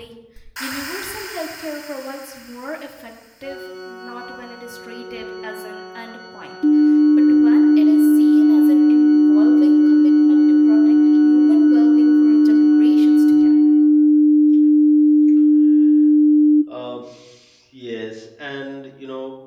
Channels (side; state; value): both; identical; correlation 1.00